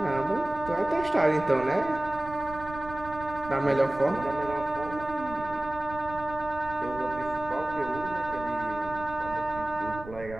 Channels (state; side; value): noise; right; rumble, 14 dB below the sound